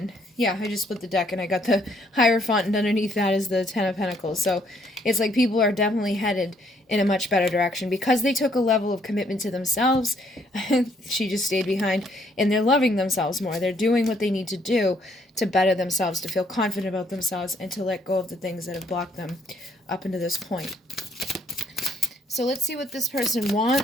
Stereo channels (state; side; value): normal; both; correlation 0.68